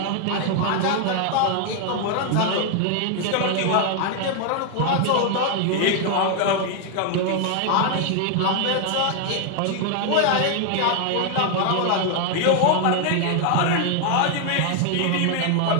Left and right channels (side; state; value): both; different; correlation 0.00